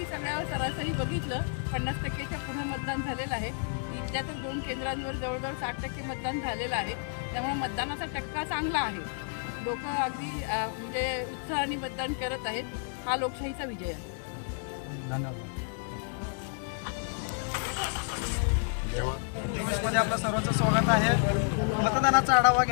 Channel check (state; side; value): silent; right; 57 dB below the other